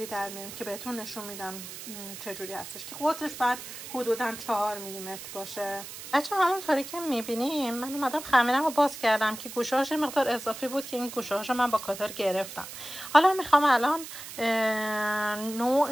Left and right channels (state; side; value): noise; right; hiss, 11 dB below the sound